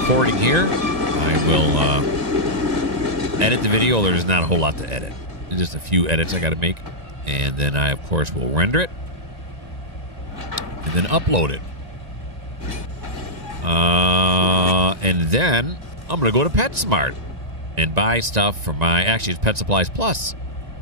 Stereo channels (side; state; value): left; late; 1.9 ms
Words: here, I will edit the video. There's not a whole lot to edit. There's just a few edits I got to make. And then I, of course, will render it. And then upload it. And then I'm going to go to PetSmart and buy stuff for my... Actually, it's Pet Supplies Plus.